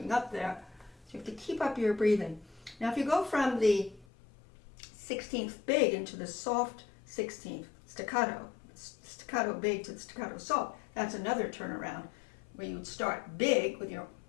up there, so you have to keep up your breathing. Now if you go from the 16th big into the soft 16th staccato big to the staccato soft, that's another turnaround where you would start big with your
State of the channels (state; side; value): drops out; right; at 4.0 s